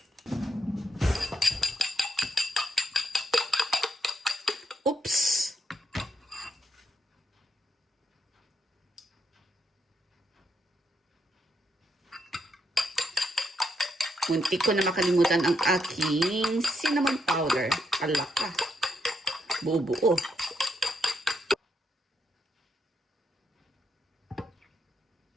Oops! Munti ko na makalimutan ang aking cinnamon powder. Alaka. Buo-buo.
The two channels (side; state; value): both; normal; correlation 0.78